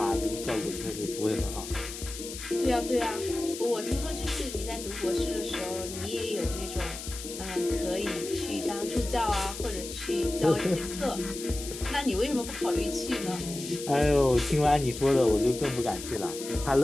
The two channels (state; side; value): noise; left; hiss, 10 dB below the sound